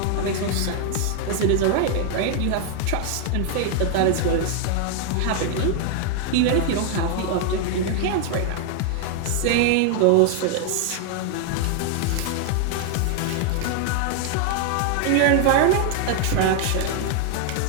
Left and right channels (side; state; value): both; different; correlation 0.00